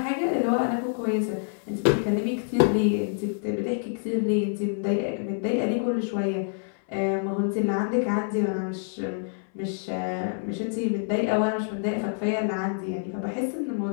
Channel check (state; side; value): silent; right; 60 dB below the other